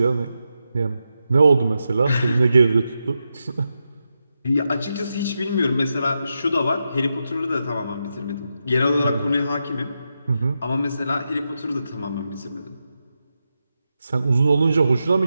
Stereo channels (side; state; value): both; inverted; correlation -0.87